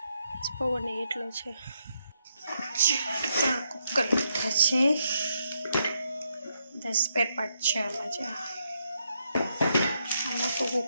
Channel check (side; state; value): both; inverted; correlation -0.79